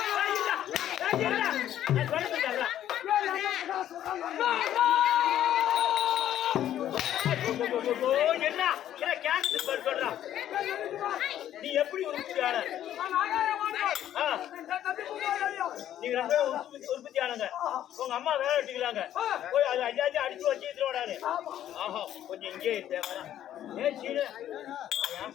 என்ன சொல்றான் நீ எப்படி உற்பத்தியாளர் நீங்க ரெண்டு உற்பத்தியானங்க உங்க அம்மா வேலை வெட்டிக்கலாங்க போய் அது அஞ்சாச்சும் அடிச்சு வச்சு விடாது ஆஹா கொஞ்சம் இங்கே தேவை ஏன் சீனு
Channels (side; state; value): right; quieter; 11.5 dB